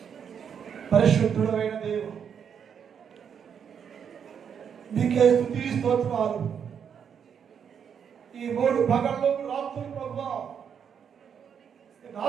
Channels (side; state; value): left; quieter; 7.6 dB